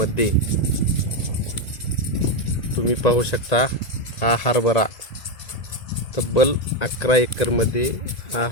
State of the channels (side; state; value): right; late; 1.9 ms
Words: तुम्ही पाहू शकता हा हरभरा तब्बल 11 एकरमध्ये हा